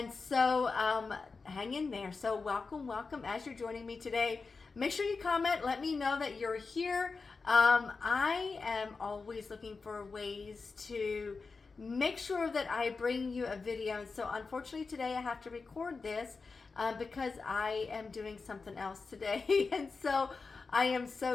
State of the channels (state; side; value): quieter; right; 4.4 dB